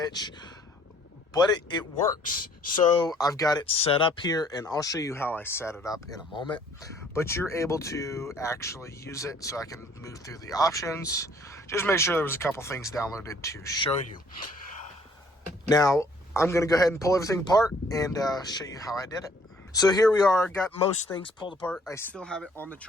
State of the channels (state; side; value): normal; both; correlation 0.60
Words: but it works. So I've got it set up here, and I'll show you how I set it up in a moment. But you're able to actually use it, so I can move through the options. Just make sure there was a couple things downloaded to show you. Now, I'm going to go ahead and pull everything apart and show you how I did it. So here we are, got most things pulled apart. I still have it on the